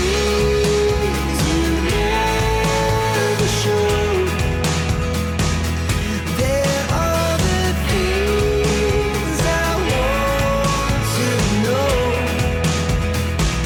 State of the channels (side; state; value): both; identical; correlation 1.00